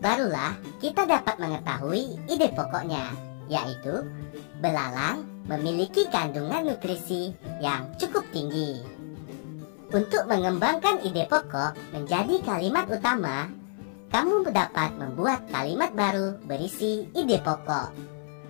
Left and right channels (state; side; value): silent; right; 59 dB below the other